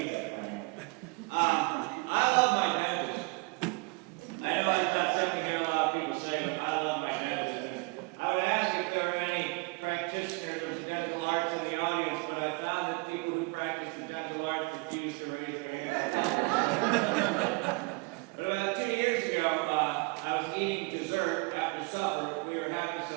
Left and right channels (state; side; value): quieter; left; 28.7 dB